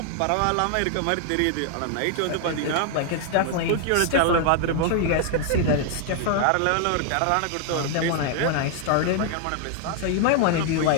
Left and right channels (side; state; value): both; different; correlation 0.00